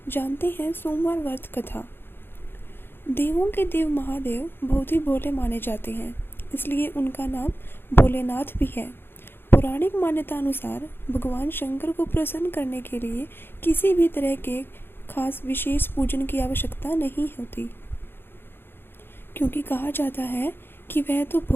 जानते हैं सोमवार व्रत कथा। देवों के देव महादेव बहुत ही भोले माने जाते हैं, इसलिए उनका नाम भोलेनाथ भी है। पौराणिक मान्यता अनुसार भगवान शंकर को प्रसन्न करने के लिए किसी भी तरह के खास विशेष पूजन की आवश्यकता नहीं होती, क्योंकि कहा जाता है कि वह तो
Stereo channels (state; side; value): late; right; 0.10 ms